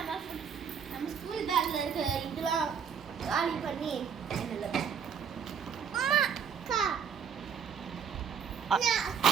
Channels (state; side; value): quieter; left; 7.1 dB